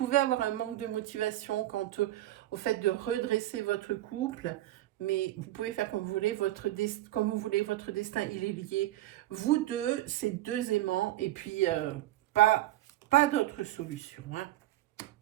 avoir un manque de motivation quant au fait de redresser votre couple. Mais vous pouvez faire comme vous voulez, comme vous voulez, votre destin, il est lié. Vous deux, c'est deux aimants, et puis pas d'autre solution. Hein.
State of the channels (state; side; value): quieter; left; 15.2 dB